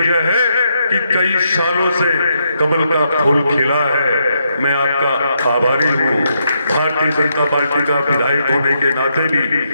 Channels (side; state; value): both; inverted; correlation -0.79